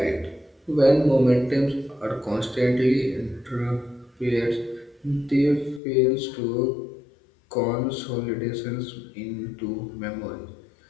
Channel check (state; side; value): drops out; right; at 5.8 s